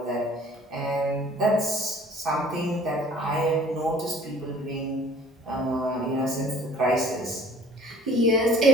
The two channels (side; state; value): both; normal; correlation 0.51